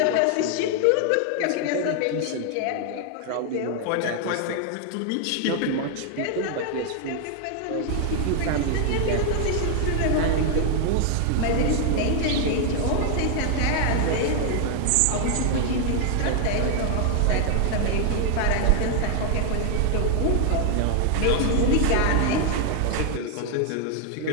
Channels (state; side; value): different; both; correlation 0.00